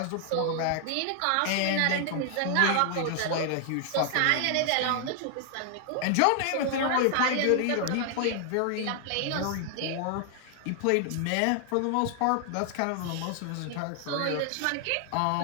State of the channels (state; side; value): different; both; correlation 0.00